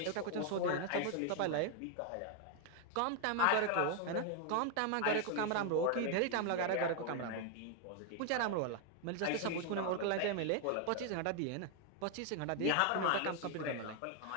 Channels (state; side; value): different; both; correlation 0.01